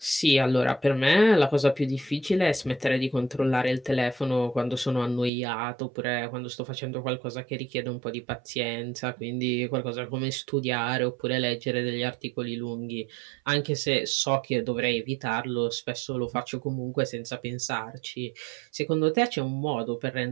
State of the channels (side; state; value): left; drops out; at 5.3 s